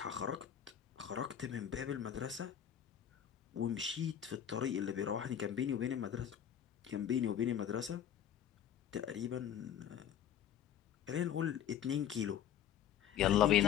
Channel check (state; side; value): quieter; right; 9.6 dB